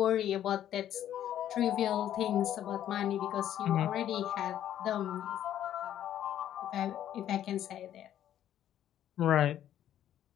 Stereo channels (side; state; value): right; quieter; 11.2 dB